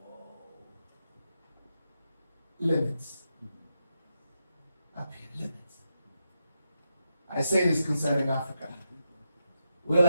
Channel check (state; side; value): inverted; both; correlation -0.86